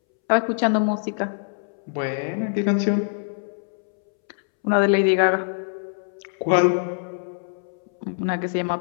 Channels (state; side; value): silent; right; 63 dB below the other